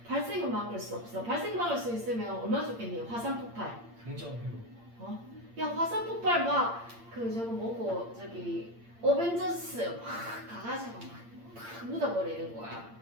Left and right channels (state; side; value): late; left; 8.7 ms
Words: 발생은 막을 수 없어. 발생 막을 수 있으면 얼마나 좋겠니? 화산 폭발. 긍정 회복. 야, 화산 폭발 막 저거 뭐고 저기 어벤져스 막 가가지고 막 묻어버리는 거야.